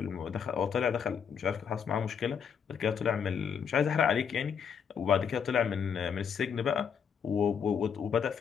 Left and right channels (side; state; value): right; quieter; 7.2 dB